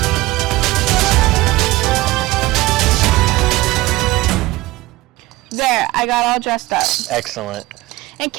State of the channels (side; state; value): left; quieter; 19.4 dB